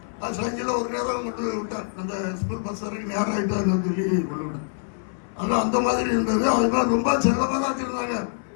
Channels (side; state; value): right; silent; digital silence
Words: அது சைக்கிளில் ஒரு நேரம் கொண்டு விட்டார். அந்த ஸ்கூல் பஸ் வரைக்கும் நேரம் ஆகிட்டாங்க சொல்லி கொண்டு விட்டேன். ஆனால் அந்த மாதிரி இருந்தது. அது மாதிரி ரொம்ப செல்லமாக தான் வச்சுருந்தாங்க.